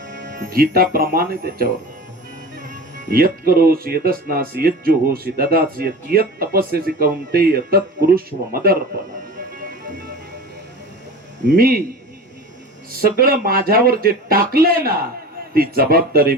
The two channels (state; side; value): normal; both; correlation 0.35